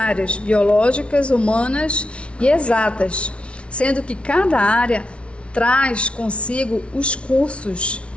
biológicas, humanas e exatas, sendo que cada área traz consigo os cursos,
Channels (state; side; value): late; right; 0.060 ms